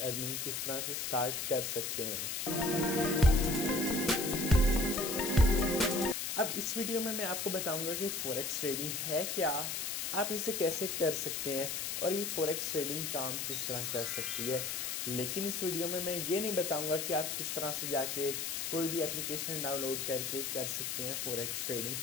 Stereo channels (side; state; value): left; noise; hiss, 2 dB below the sound